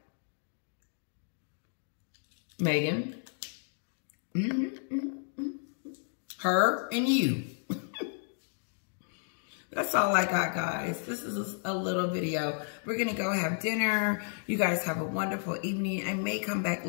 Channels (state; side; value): silent; right; 56 dB below the other